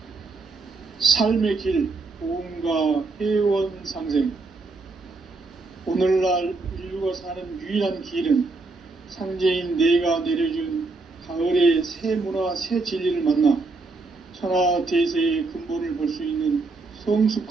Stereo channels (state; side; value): quieter; left; 3.6 dB